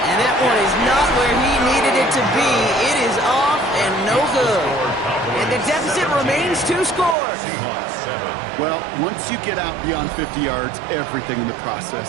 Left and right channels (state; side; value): drops out; left; at 7.2 s